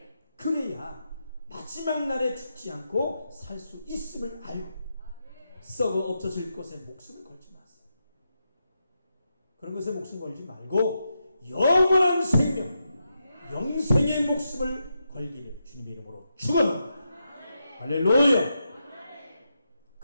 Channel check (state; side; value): inverted; both; correlation -0.86